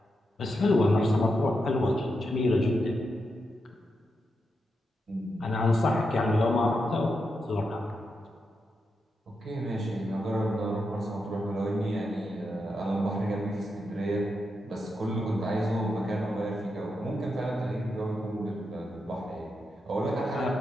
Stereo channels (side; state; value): both; normal; correlation 0.85